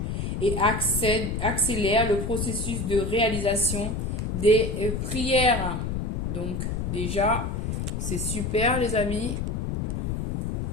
et accélère le processus de réalisation des prières. Donc, déjà, c'est super les amis.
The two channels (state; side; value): noise; left; rumble, 2 dB below the sound